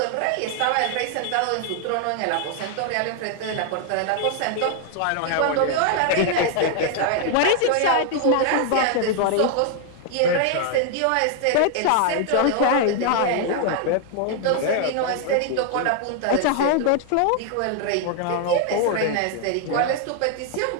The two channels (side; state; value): both; different; correlation 0.00